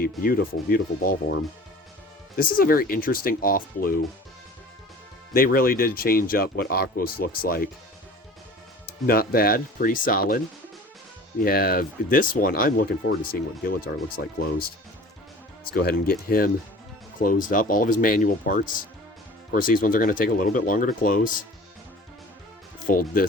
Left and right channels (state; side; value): normal; both; correlation 0.43